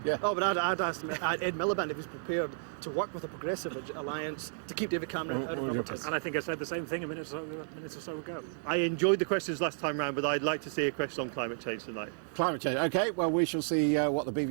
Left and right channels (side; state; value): left; silent; digital silence